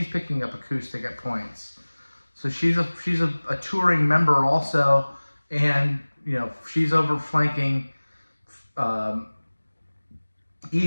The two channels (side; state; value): both; inverted; correlation -1.00